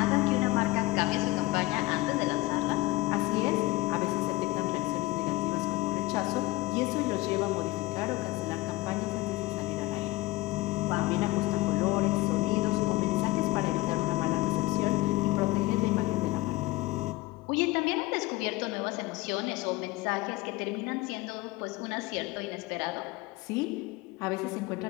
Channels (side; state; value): right; quieter; 20.3 dB